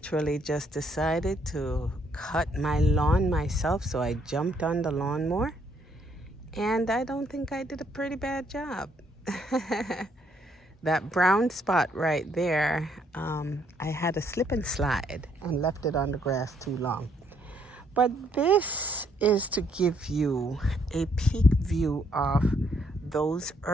just decided to cut my lawn myself, so I jumped on the lawnmower, and I don't think I did a pretty bad job. That brown spot right there, I had a slip and slide and left it on the grass too long. But this is to give you a peek view of those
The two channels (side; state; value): both; normal; correlation 0.70